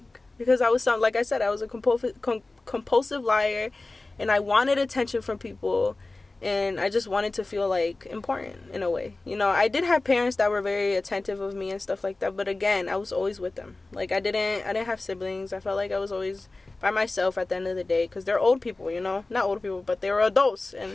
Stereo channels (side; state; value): right; quieter; 3.2 dB